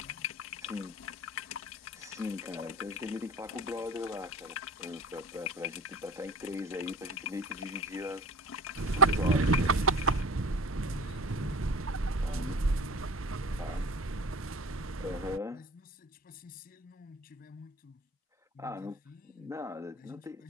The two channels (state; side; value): normal; both; correlation 0.39